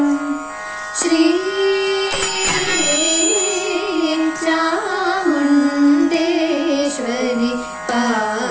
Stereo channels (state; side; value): identical; both; correlation 1.00